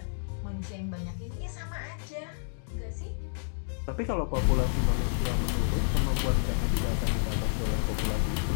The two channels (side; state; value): right; silent; digital silence